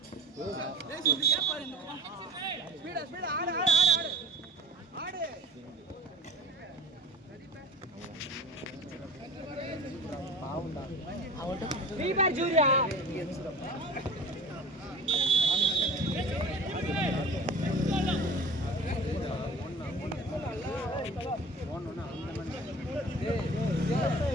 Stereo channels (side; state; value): both; normal; correlation 0.39